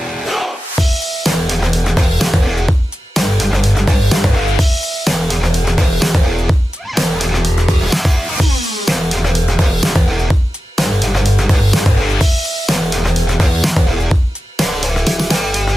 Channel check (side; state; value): both; normal; correlation 0.93